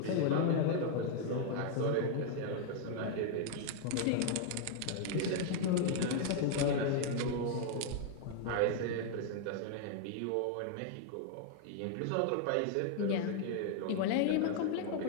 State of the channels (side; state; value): both; different; correlation 0.00